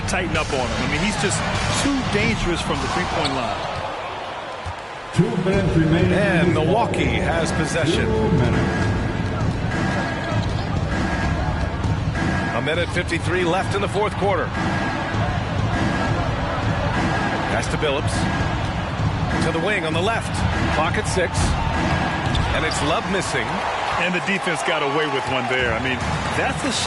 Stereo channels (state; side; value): identical; both; correlation 1.00